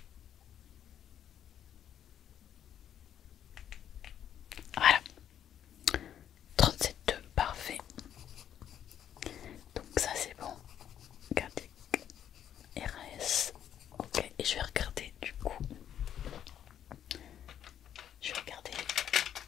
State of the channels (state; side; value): quieter; right; 9.9 dB